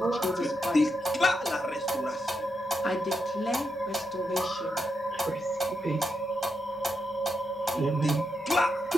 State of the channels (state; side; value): normal; both; correlation 0.84